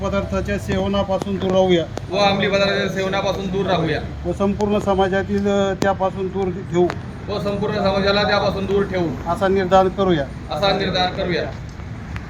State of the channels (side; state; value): both; identical; correlation 1.00